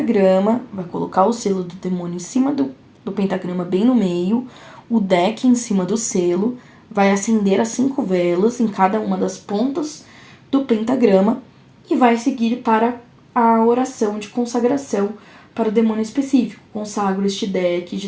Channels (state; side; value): identical; both; correlation 1.00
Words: vai colocar o selo do demônio em cima do pentagrama, bem no meio, o deck em cima do selo, vai acender as 5 velas em cada uma das pontas do pentagrama e vai seguir para a oração de consagração para o demônio específico. Consagro este deck